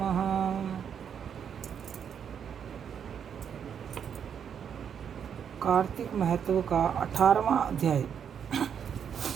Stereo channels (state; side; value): quieter; left; 7.9 dB